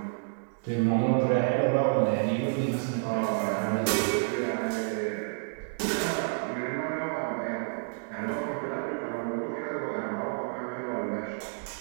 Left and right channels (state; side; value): silent; left; 58 dB below the other